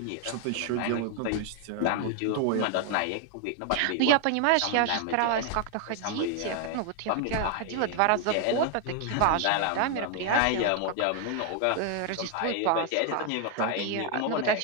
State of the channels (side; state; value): both; different; correlation 0.00